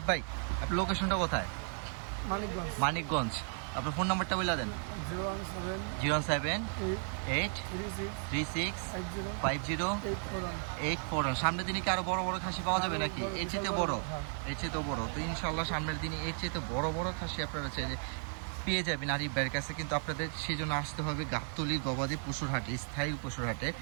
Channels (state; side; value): silent; left; 55 dB below the other